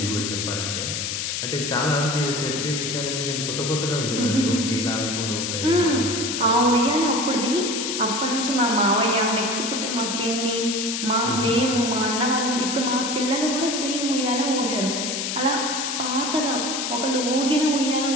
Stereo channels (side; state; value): left; noise; hiss, 2 dB below the sound